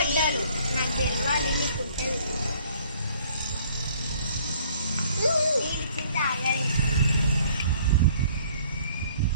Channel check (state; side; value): inverted; both; correlation -0.58